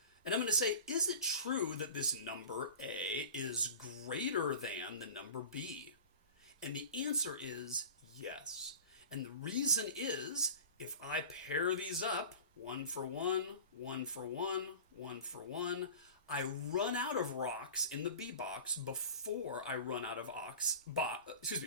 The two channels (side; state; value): both; inverted; correlation -0.37